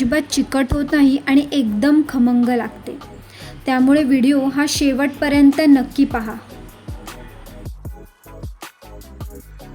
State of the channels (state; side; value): identical; both; correlation 1.00